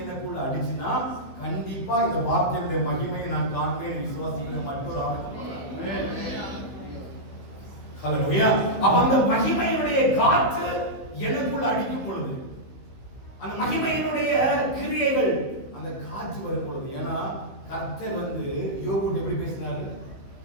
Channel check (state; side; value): late; right; 16 ms